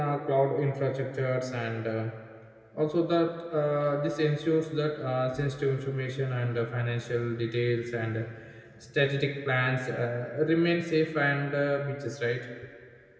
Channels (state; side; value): identical; both; correlation 1.00